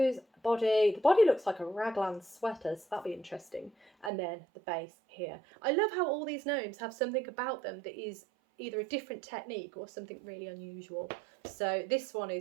body. The body looks like a raglan sweater, so that'll be interesting. And then the base here. I love how all these gnomes have something about them that is either a different technique or something really unusual. So this one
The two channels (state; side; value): drops out; left; at 4.1 s